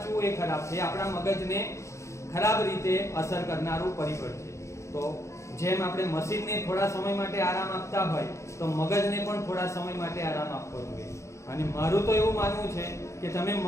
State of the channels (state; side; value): late; right; 0.14 ms